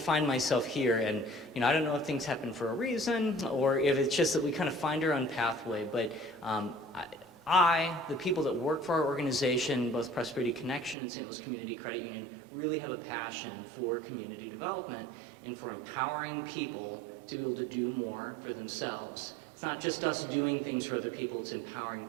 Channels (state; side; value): drops out; left; at 11.0 s